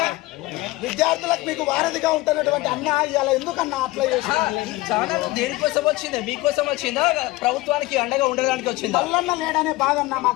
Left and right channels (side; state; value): right; quieter; 19.8 dB